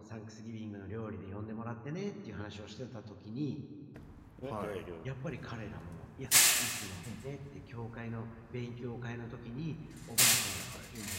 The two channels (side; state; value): both; identical; correlation 1.00